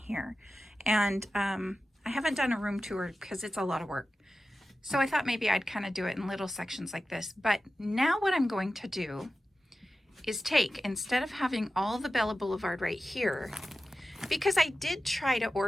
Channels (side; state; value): both; normal; correlation 0.94